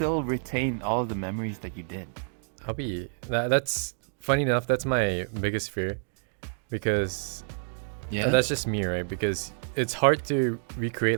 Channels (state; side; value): silent; left; digital silence